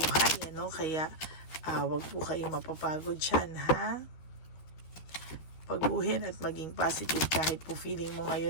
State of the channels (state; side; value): late; right; 12 ms